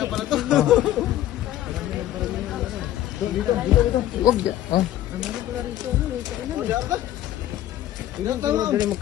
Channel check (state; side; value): quieter; right; 13.2 dB